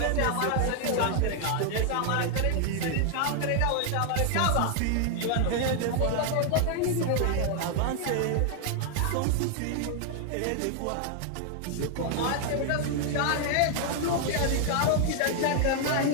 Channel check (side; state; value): both; different; correlation 0.00